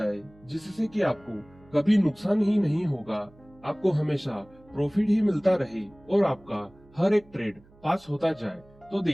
जिससे कि आपको कभी नुकसान ही नहीं होगा, आपको हमेशा प्रॉफिट ही मिलता रहे और आपका हर एक ट्रेड पास होता जाए, तो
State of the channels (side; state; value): right; noise; hum, 27 dB below the sound